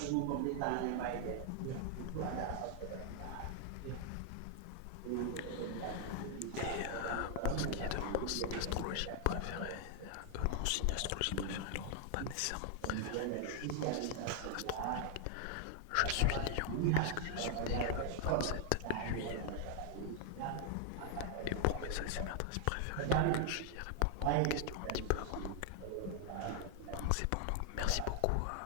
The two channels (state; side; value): different; both; correlation 0.00